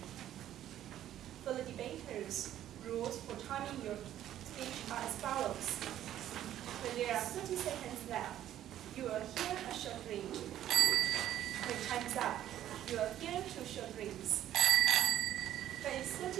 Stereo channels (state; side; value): quieter; left; 11.9 dB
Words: For the debaters, rules for timing your speech are as follows. When there are 30 seconds left, you will hear a short ring. When time's up, you will hear two short rings. When it's 30